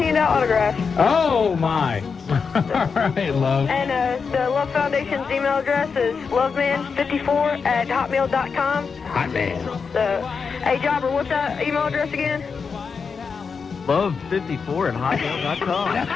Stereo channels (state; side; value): quieter; right; 5.5 dB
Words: out autographs. Oh, my. All right, Love. And the Love Foundation's email address is loveman54@hotmail.com. Hotman. Hey, Jobber, what's that email address again? Love54@hotmail.com.